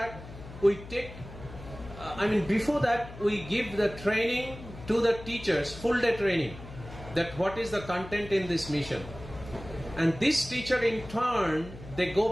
we take, before that, we give the training to the teachers, full day training, that what is the content in this mission. And this teacher in turn, they go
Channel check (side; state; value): left; noise; hum, 15 dB below the sound